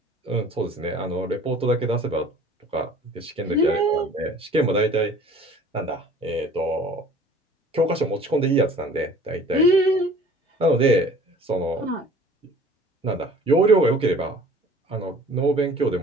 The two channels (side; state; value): both; normal; correlation 0.49